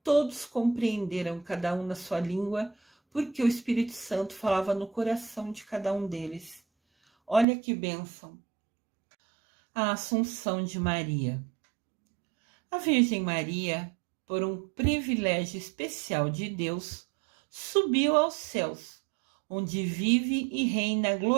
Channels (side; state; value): left; drops out; at 7.5 s